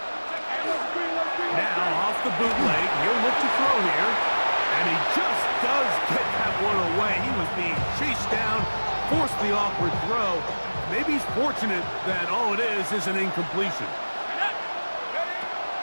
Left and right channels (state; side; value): inverted; both; correlation -1.00